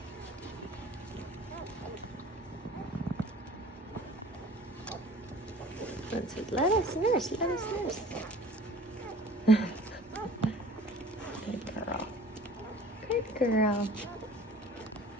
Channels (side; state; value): both; normal; correlation 0.47